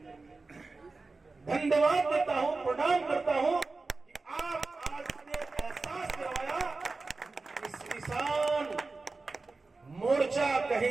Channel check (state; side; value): quieter; left; 3.7 dB